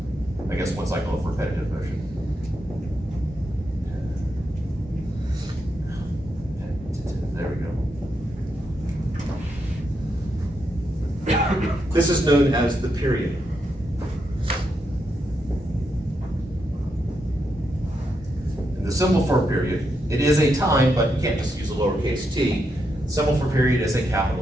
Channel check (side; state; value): both; normal; correlation 0.82